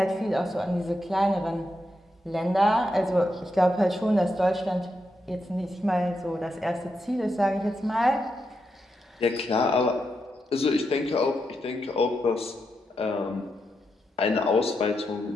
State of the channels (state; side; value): normal; both; correlation 0.84